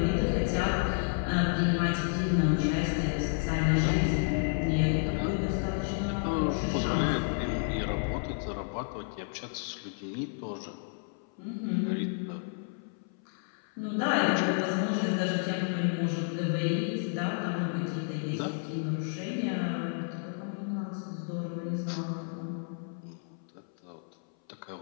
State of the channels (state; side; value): silent; right; 57 dB below the other